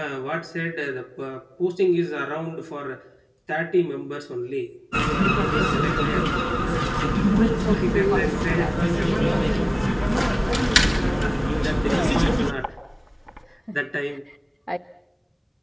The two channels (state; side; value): identical; both; correlation 1.00